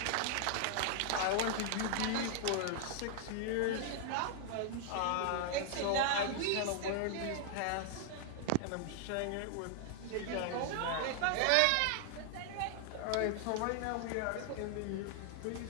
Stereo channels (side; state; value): both; different; correlation 0.00